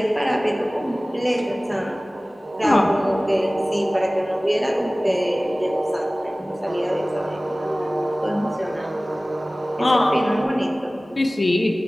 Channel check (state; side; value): normal; both; correlation 0.98